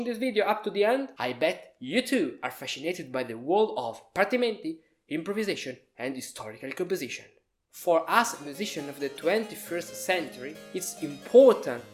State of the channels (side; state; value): both; identical; correlation 1.00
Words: this video up to the end, I bet you too are fascinated by the world of partimenti, improvisation and historical composition. For us musicians of the 21st century, it's important